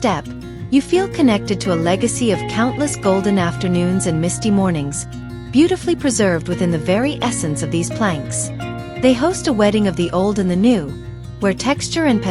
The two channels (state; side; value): identical; both; correlation 1.00